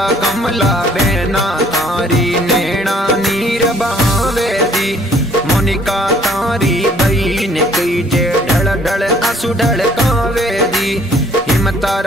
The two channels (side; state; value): both; normal; correlation 0.60